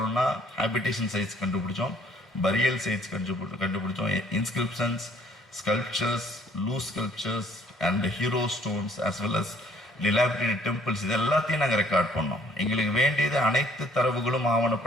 ஹேபிடேஷன் சைட்ஸ் கண்டுபிடிச்சோம், பரியல் சைட்ஸ் கண்டுபிடிச்சோம், inscriptions, sculptures, loose sculptures and hero stones as well as dilapidated temples. இது எல்லாத்தையும் நாங்கள் ரெக்கார்ட் பண்ணோம். எங்களுக்கு வேண்டியது அனைத்து தரவுகளும்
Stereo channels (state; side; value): normal; both; correlation 0.61